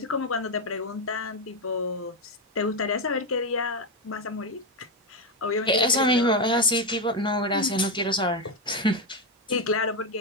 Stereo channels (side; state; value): both; normal; correlation 0.09